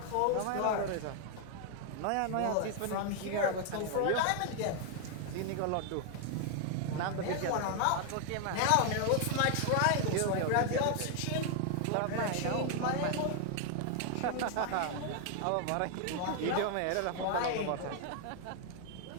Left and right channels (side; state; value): both; different; correlation 0.00